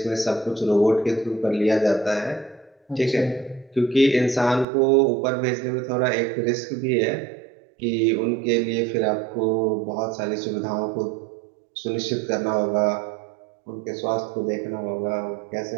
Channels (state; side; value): drops out; left; at 4.7 s